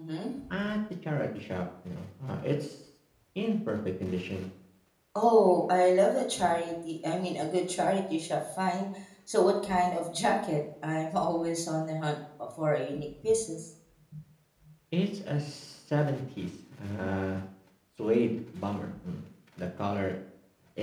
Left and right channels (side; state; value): both; identical; correlation 1.00